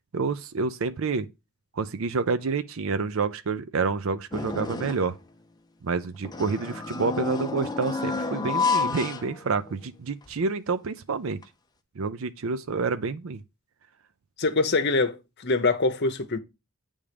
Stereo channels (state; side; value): normal; both; correlation -0.04